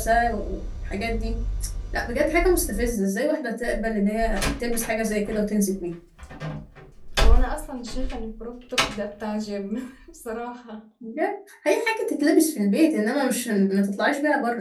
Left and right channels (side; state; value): both; identical; correlation 1.00